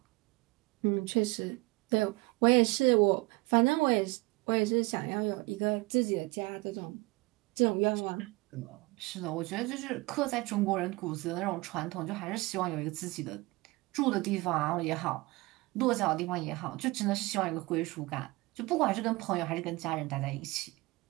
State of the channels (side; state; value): left; quieter; 23.0 dB